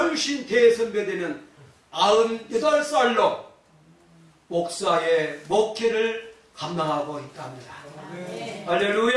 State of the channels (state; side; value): identical; both; correlation 1.00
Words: 대선배되는 98살로 목사의 목회를 감당하고 있답니다. 네.